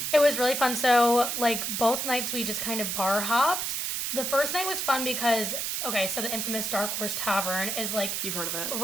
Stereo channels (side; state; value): right; noise; hiss, 1 dB below the sound